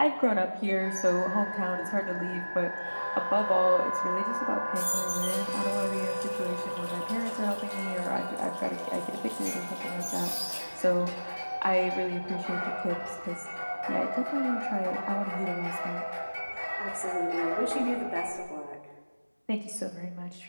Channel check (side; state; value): both; inverted; correlation -1.00